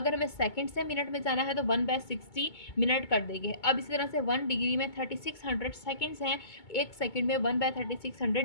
हमें सेकंड से मिनट में जाना है तो 1/60 मिनट कर देंगे। अब इसी तरह से 1 डिग्री में 3600 सेकंड्स हैं, 1 सेकंड में 1/3600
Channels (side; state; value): right; late; 2.2 ms